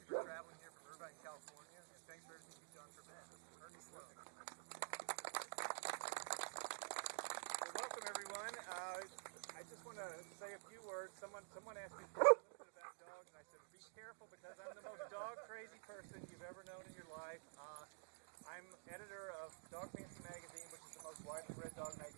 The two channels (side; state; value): left; silent; digital silence